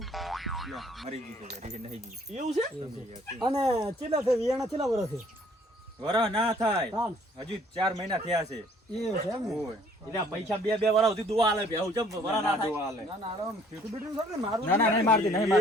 લ્યો, મરી ગઈ છે રીહે નહીં ગઈ એવું છે અને ચેલા છે વિયાણા ચેલા વર્ષ છે વરહ ના થાય તાન હજુ 4 મહિના થયા છે એવું છે એમ ને ઓય એટલે આ પૈસા બે વાળા સુધી દુવા આલે બેહું ચમ વરા ના થાય દુવા હાલે. ના ના આરામ ફીટું બીટું છે ને મારું ના ના નહીં મારતી નહીં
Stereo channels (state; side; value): normal; both; correlation 0.59